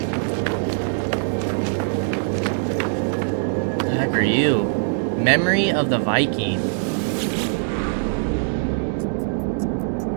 What the heck are you? Memory of the Viking.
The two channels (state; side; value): silent; left; digital silence